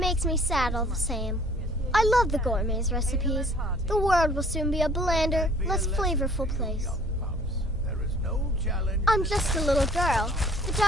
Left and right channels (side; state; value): both; normal; correlation 0.54